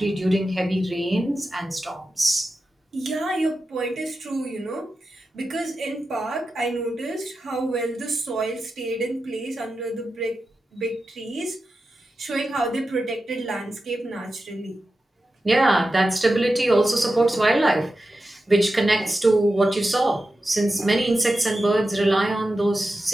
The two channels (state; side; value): normal; both; correlation 0.91